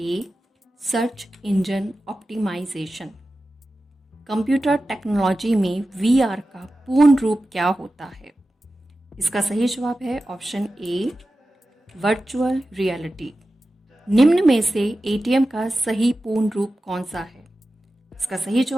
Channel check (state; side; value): normal; both; correlation 0.94